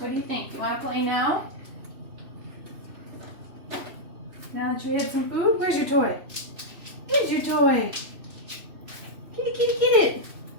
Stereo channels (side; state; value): left; late; 3.0 ms